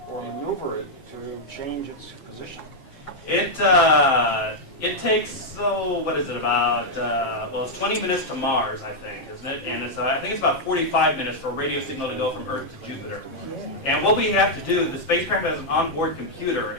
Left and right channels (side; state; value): right; late; 7.6 ms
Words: or maneuver it to change its position? It takes, what is it, about, it's 20 minutes to Mars, I think, isn't it? And I think it's about 45 minutes for a radio signal to go from Earth to Jupiter. And what we have to do, the spacecraft has an onboard